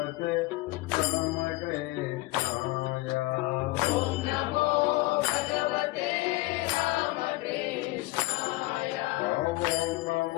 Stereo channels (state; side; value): quieter; right; 20.6 dB